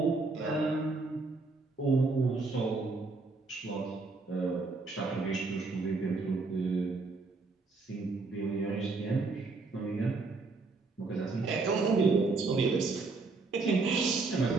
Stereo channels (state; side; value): quieter; left; 3.9 dB